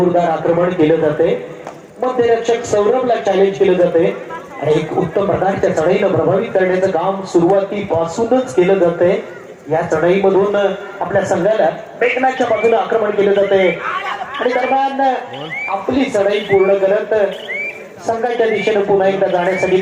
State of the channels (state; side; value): identical; both; correlation 1.00